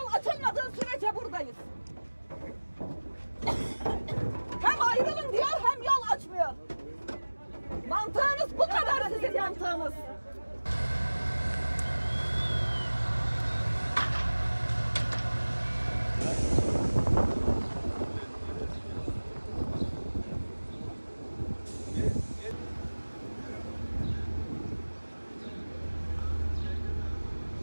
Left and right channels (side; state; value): both; inverted; correlation -1.00